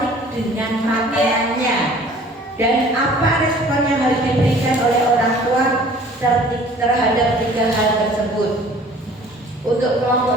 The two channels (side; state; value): both; normal; correlation 0.50